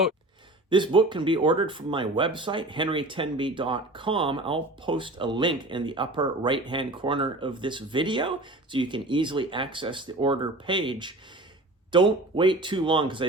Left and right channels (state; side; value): normal; both; correlation 0.39